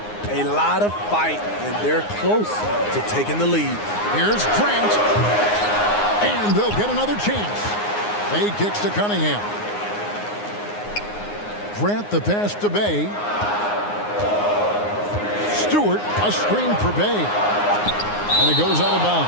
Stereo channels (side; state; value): right; late; 9.6 ms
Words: a lot of fight, and they're close to taking the lead. Here's Grant. And they'll get another chance. Bay kicks to Cunningham. Grant the pass to Bay. Stewart, a screen for Bay. And it goes out of